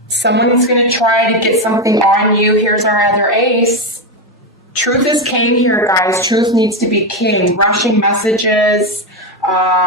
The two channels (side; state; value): both; normal; correlation 0.10